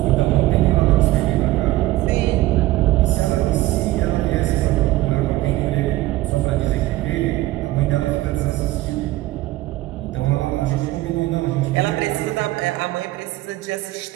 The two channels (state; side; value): quieter; left; 17.0 dB